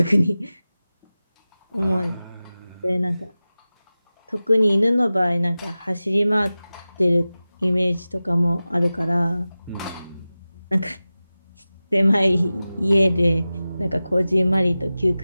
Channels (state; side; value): inverted; both; correlation -0.96